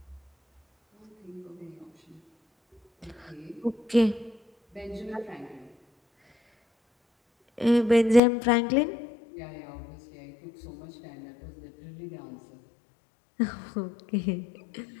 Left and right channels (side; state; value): right; drops out; at 8.2 s